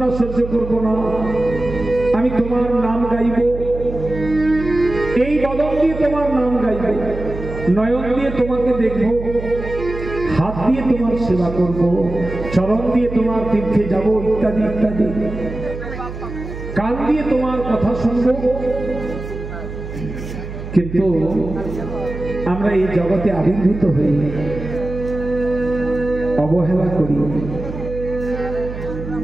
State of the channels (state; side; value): noise; right; hum, 9 dB below the sound